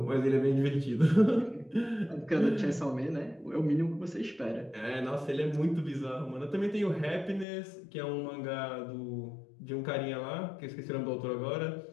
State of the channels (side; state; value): right; drops out; at 7.5 s